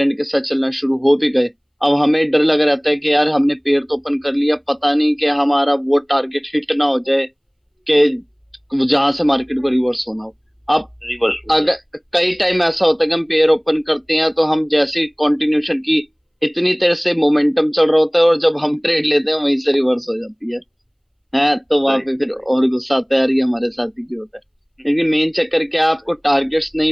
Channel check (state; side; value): identical; both; correlation 1.00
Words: के साथ चलना शुरू हो भी गए, अब हमें डर लग रहता है कि यार हमने पेड़ तो ओपन कर लिया, पता नहीं कि हमारा वो टारगेट हिट ना हो जाए, कि जहां से मार्केट को रिवर्स होना हो। अब रिवर्स हो जाए। अगर कई टाइम ऐसा होता है कि हम पेयर ओपन करते हैं तो हम जैसे कंटिन्यूशन की इतनी देर से मोमेंटम चल रहा होता है, और जब हम ट्रेड लेते हैं वहीं से रिवर्स हो जाती है तो वहां राइट पे फिर राइट। और गुस्सा आता है, यार ये हमारे साथ ही क्यों होता है। लेकिन मेन चक्कर क्या है, आपको टारगेट्स